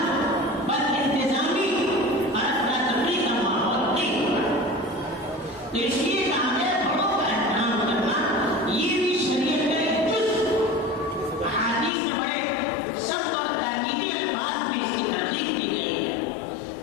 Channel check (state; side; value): drops out; right; at 11.9 s